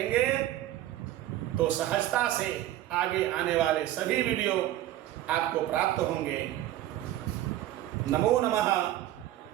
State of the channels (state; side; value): quieter; left; 13.9 dB